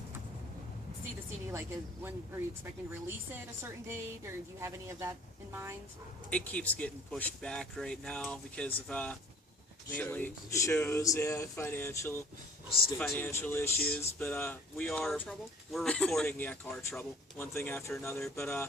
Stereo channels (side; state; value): both; normal; correlation 0.50